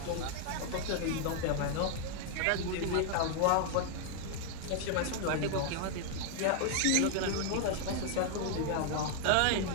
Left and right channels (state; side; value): different; both; correlation 0.00